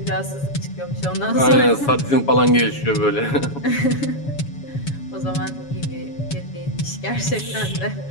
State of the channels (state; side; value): late; right; 7.1 ms